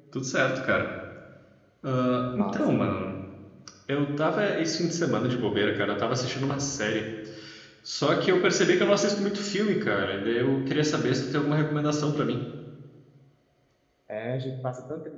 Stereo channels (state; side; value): identical; both; correlation 1.00